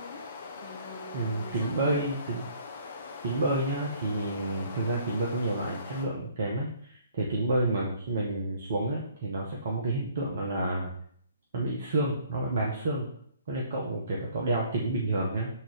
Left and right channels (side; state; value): both; inverted; correlation -0.59